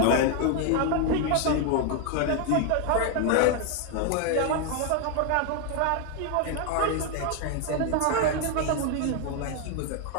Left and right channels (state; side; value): different; both; correlation 0.01